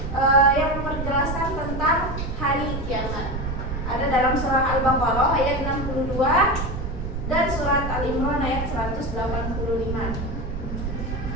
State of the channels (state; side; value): noise; right; rumble, 5 dB below the sound